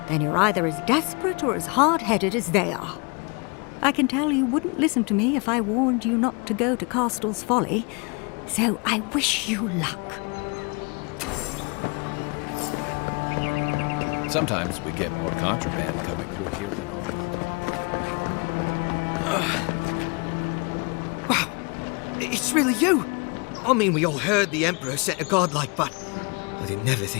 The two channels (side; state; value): right; quieter; 31.4 dB